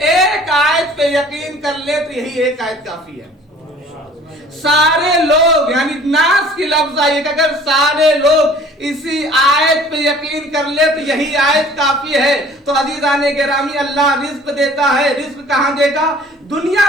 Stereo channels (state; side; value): normal; both; correlation 0.51